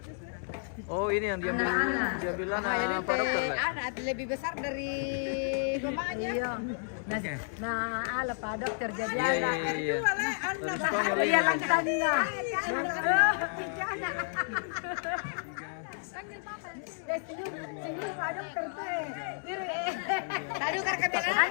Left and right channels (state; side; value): silent; right; 57 dB below the other